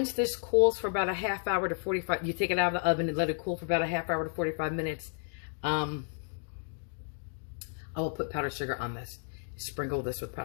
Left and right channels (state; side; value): silent; right; 56 dB below the other